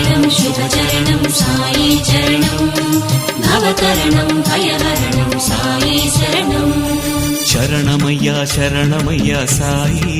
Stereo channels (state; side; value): identical; both; correlation 1.00